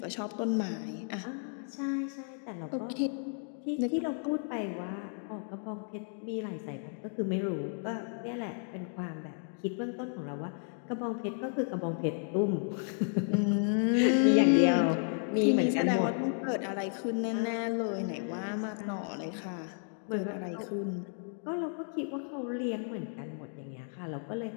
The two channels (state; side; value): silent; right; 56 dB below the other